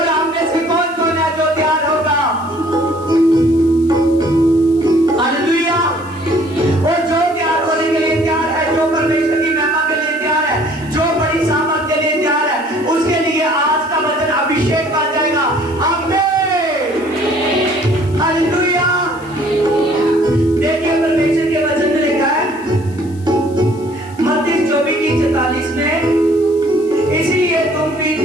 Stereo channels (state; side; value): noise; left; hiss, 25 dB below the sound